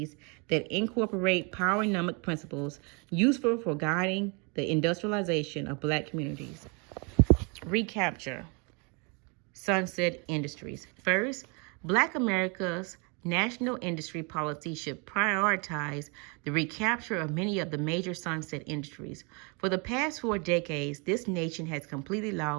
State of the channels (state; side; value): quieter; left; 32.7 dB